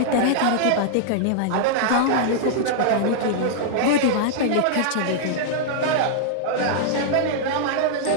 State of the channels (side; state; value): both; different; correlation -0.01